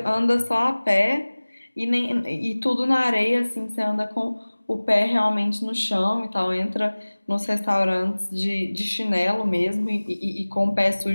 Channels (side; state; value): both; inverted; correlation -1.00